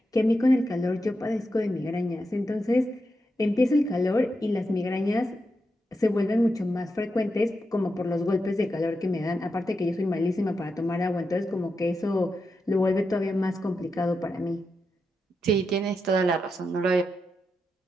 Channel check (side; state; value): both; normal; correlation 0.86